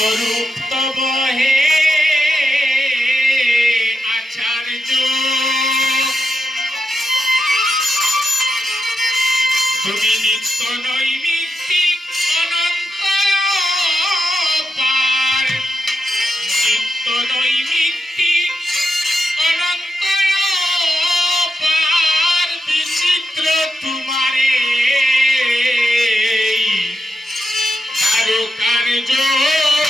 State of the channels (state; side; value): normal; both; correlation 0.85